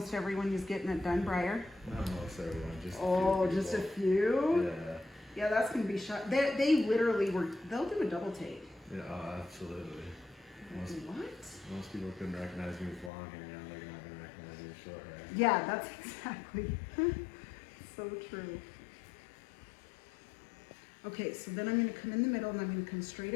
everyone who's getting it done, Briar? Not most everyone, just Just a few? Yeah. Yeah, that's gonna be shot. They literally they'll do a double take. Yeah, absolutely. Most people couldn't recognize me with long hair, now they're not gonna recognize me with short hair. Yeah, that's exactly so true. Okay, so then I'm gonna come in the middle and I'm gonna come straight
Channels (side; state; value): right; drops out; at 13.1 s